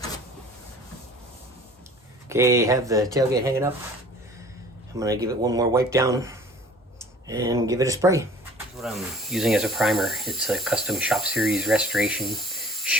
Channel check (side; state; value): both; normal; correlation 0.49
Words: Okay, have the tailgate hanging up. I'm gonna give it one more wipe down and give it a spray. What I'm using as a primer, it's a Custom Shop Series Restoration